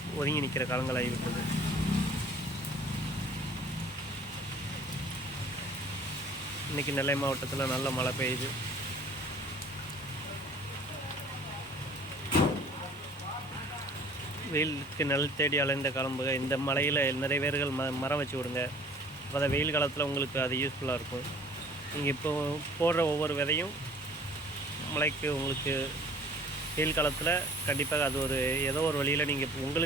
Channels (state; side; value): normal; both; correlation 0.51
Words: ஒதுங்கி நிற்கிற காலங்கள் ஆகிவிட்டது. இன்றைக்கி நெல்லை மாவட்டத்தில் நல்ல மழை பெய்யுது. வெயிலுக்கு நெல் தேடி அலைந்த காலம் போக இந்த மலையில் நிறைய பேர்கள் மரம் வச்சு விடுங்க. அப்போ தான் வெயில் காலத்தில் உங்களுக்கு அது யூஸ்ஃபுல்லாக இருக்கும். நீங்கள் இப்போ போடுற ஒவ்வொரு விதையும் மழைக்கு உங்களுக்கு வெயில் காலத்தில் கண்டிப்பாக அது ஏதோ ஒரு வழியில் நீங்கள்